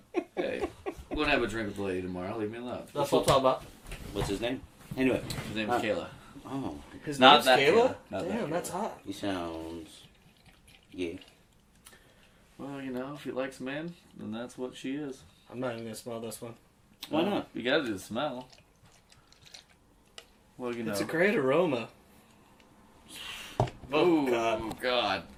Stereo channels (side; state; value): both; identical; correlation 1.00